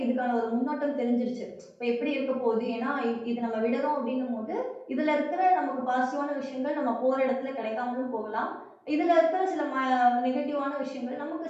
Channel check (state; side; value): identical; both; correlation 1.00